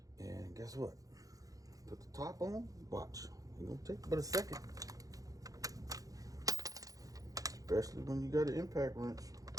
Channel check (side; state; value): left; late; 0.17 ms